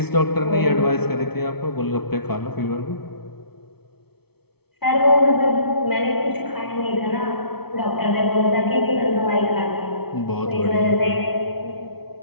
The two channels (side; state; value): right; late; 0.96 ms